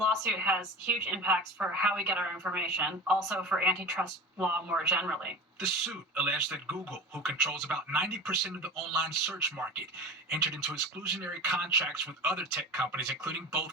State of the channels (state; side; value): normal; both; correlation 0.32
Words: has huge impacts for how we get our information, also for antitrust law more generally. The suit alleged that Google, who controls about 90% of the online search market, entered into exclusionary contracts with other tech companies, including both